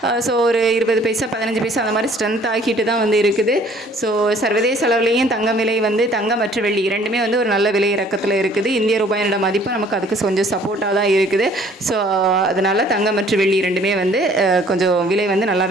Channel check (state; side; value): normal; both; correlation 0.57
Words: ஸோ ஒரு 20 பைசா 15 பைசா அந்த மாதிரி ஸ்ட்ரென்த் ஆகிட்டு தான் வந்து இருக்குது. ஸோ சர்வதேச அளவுலேயும் தங்கம் விலை வந்து தங்கம் மற்றும் வெள்ளி இரண்டுமே வந்து ஒரு நல்ல விலை இறக்கத்தில் இருக்குது. இந்திய ரூபாயோட மதிப்பு நமக்கு அதுக்கு கொஞ்சம் சப்போர்ட்டாக தான் இருக்குது. ஸோ அதனால் தங்கம் மற்றும் வெள்ளி இரண்டுமே வந்து கொஞ்சம் விலை வந்து